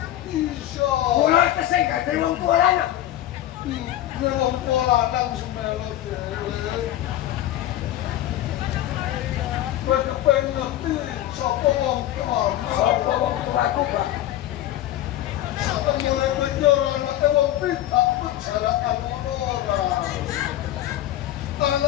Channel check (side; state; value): right; quieter; 13.4 dB